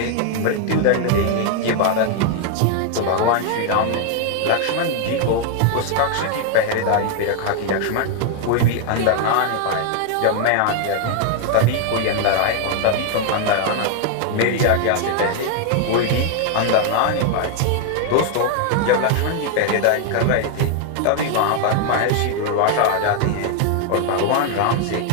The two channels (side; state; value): both; different; correlation 0.00